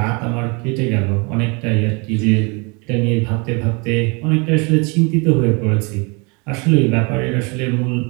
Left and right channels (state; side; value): quieter; left; 30.6 dB